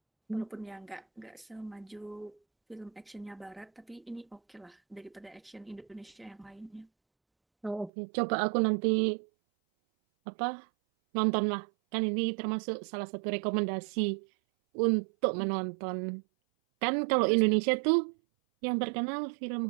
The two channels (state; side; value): drops out; left; at 7.9 s